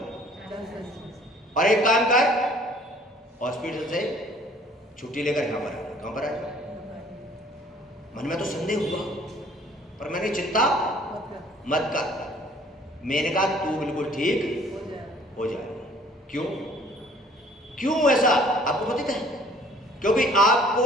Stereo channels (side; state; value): both; normal; correlation 0.55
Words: और एक काम कर, हॉस्पिटल से छुट्टी लेकर यहाँ पर आ। कहाँ पर आया? मन में तो संदेह हुआ पर मैंने चिंता मत कर। मैंने कहा तू बिल्कुल ठीक हो जाए। क्यों ऐसा आपको पता है? क्योंकि आपको